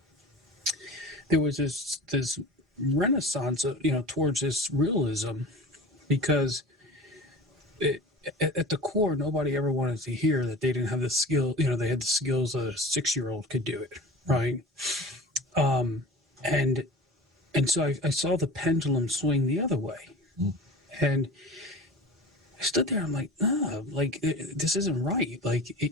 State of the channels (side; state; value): both; normal; correlation 0.37